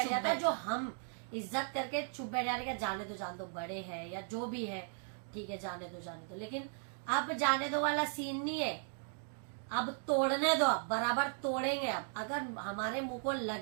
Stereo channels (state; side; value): silent; left; 53 dB below the other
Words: चुप जाता है। बैठ जो हम इज्जत करके चुप बैठ जाने का, जान दो बड़े हैं या जो भी है, ठीक है जाने दो, लेकिन अब जाने दो वाला सीन नहीं है। अब तोड़ने दो, अब बराबर तोड़ेंगे। अब अगर हमारे मुंह को